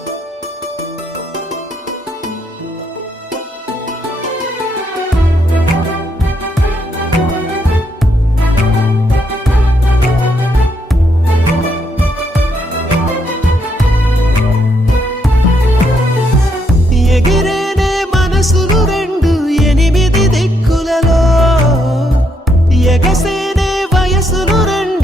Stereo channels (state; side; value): normal; both; correlation 0.75